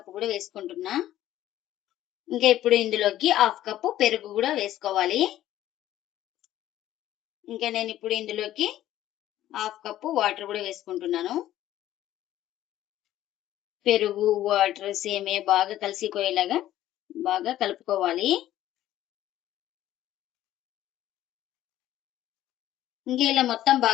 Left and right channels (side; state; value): right; quieter; 13.4 dB